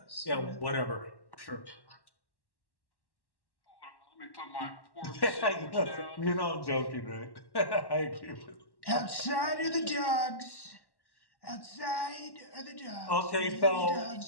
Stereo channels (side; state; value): right; late; 1.1 ms